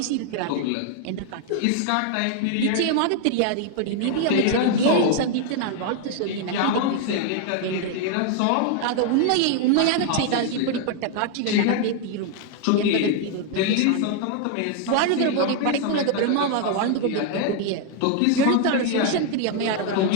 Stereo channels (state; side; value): different; both; correlation 0.00